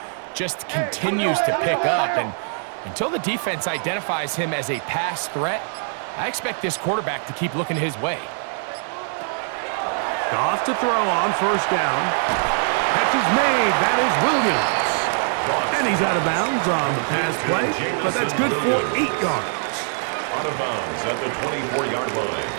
just continues to pick up. And until the defense identifies him as a pass threat, I expect this quarterback to keep looking his way. Goff to throw on 1st down. Catch is made. That is Williams. And he's out of bounds on the pass play, but that's good for 8 yards. Out of bounds at the 24-yard line.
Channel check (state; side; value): silent; left; 64 dB below the other